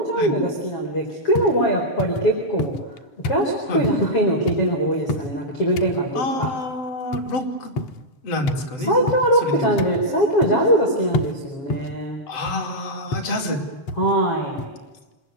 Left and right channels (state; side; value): late; right; 7.7 ms